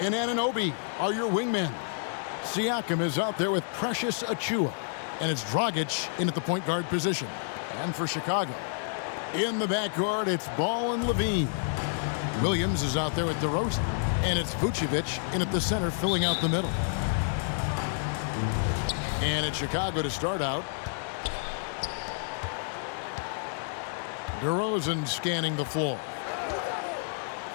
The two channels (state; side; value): silent; right; digital silence